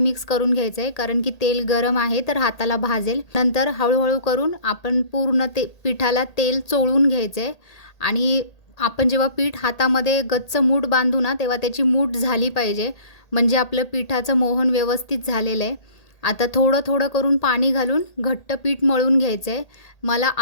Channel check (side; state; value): right; late; 1.8 ms